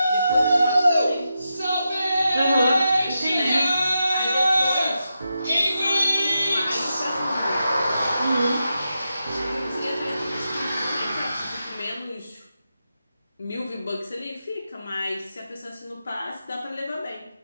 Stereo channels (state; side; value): inverted; both; correlation -0.87